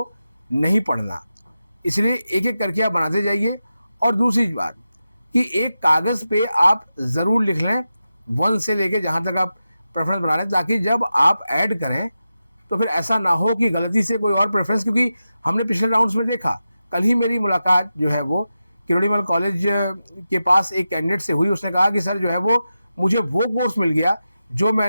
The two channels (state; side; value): inverted; both; correlation -0.92